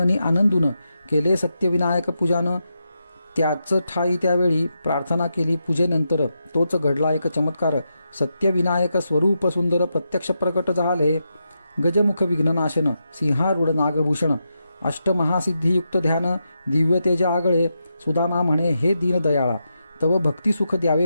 आनंदून केले सत्यविनायक पूजान. त्याच ठाई त्यावेळी प्रार्थना केली. पूजेनंतर तोच घडला एक चमत्कार. सत्यविनायक स्वरूप सुंदर प्रत्यक्ष प्रकट झाले. गजमुख विघ्ननाशन, सिंहारूढ नागभूषण, अष्टमहासिद्धियुक्त ध्यान, दिव्य तेज आगळे. सुदामा म्हणे, हे दीनदयाळा, तव भक्तिसुख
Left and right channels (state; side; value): inverted; both; correlation -0.86